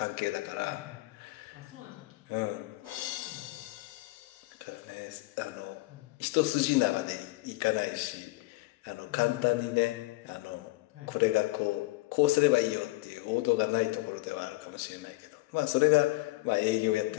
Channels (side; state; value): right; quieter; 20.9 dB